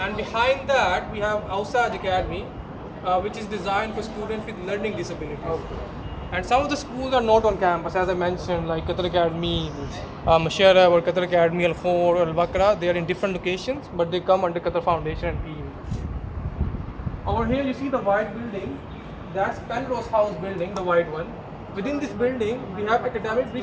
behind that, we have Ausaj Academy, which is designed for students with learning disabilities. And some of the schools are not on campus, as I mentioned, like Qatar Academy, Mashara, or Qatar Academy Al Khor or Al Bakra. They are in different locations, but they come under Qatar Foundation and PE. Over here, you see the white building. That's Penrose House building, the white one. Within this building, we have academic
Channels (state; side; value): identical; both; correlation 1.00